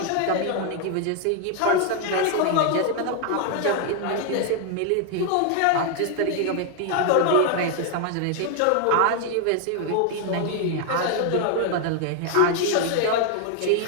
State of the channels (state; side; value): different; both; correlation 0.00